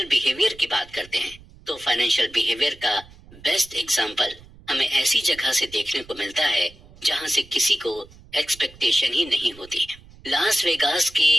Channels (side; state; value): right; noise; rumble, 23 dB below the sound